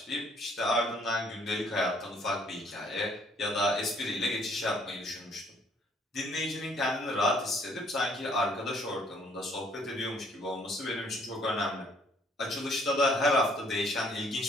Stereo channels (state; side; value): normal; both; correlation 0.63